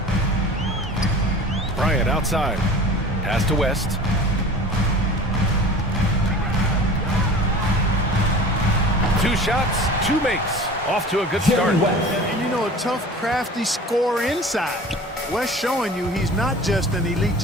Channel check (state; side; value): normal; both; correlation 0.40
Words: Bryant outside. Pass to West. Two shots, two makes. Off to a good start. And you know, a tough, crafty scorer inside. West showing you he's not just an elite